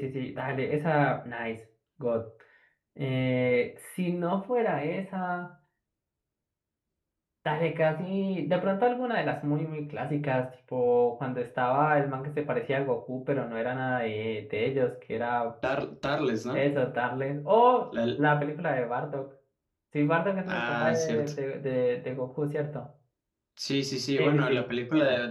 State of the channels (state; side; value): identical; both; correlation 1.00